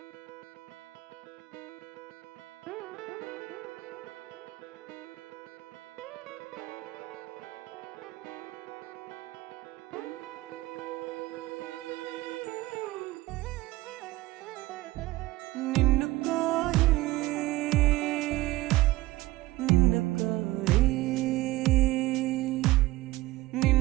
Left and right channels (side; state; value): left; quieter; 18.5 dB